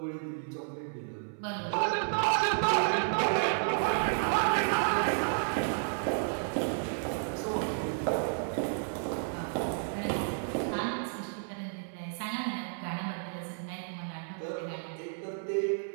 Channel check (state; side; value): silent; left; 57 dB below the other